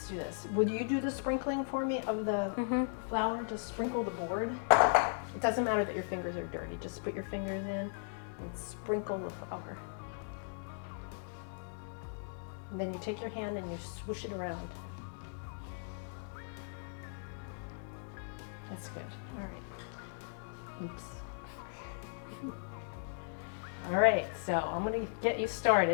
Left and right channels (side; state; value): right; silent; digital silence